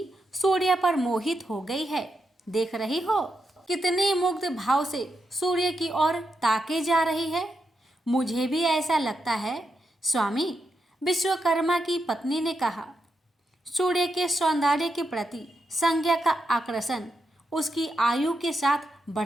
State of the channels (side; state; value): both; normal; correlation 0.85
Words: सूर्य पर मोहित हो गई है। देख रही हो कितने मुग्ध भाव से सूर्य की ओर ताके जा रही है। मुझे भी ऐसा लगता है स्वामी। विश्वकर्मा की पत्नी ने कहा। सूर्य के सौंदर्य के प्रति संज्ञा का आकर्षण उसकी आयु के साथ